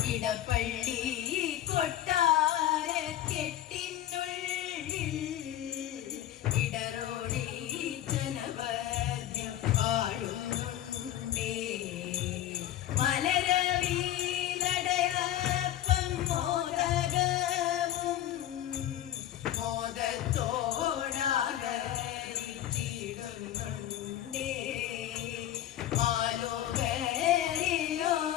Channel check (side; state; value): right; quieter; 12.4 dB